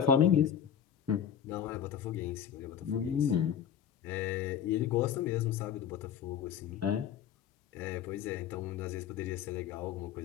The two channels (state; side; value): quieter; right; 8.9 dB